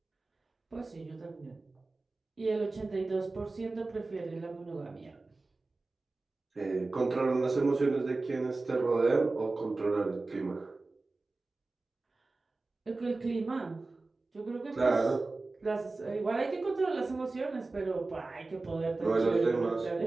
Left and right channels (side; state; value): left; quieter; 3.4 dB